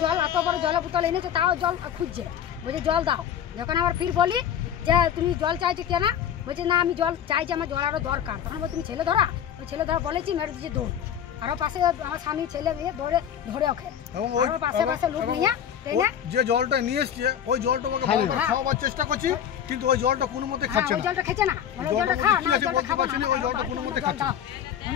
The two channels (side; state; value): right; quieter; 9.3 dB